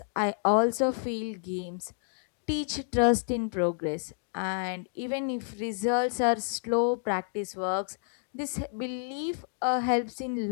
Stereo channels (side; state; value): right; silent; digital silence